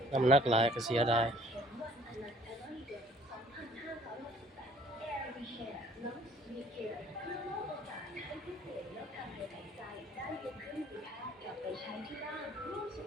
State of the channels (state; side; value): normal; both; correlation 0.56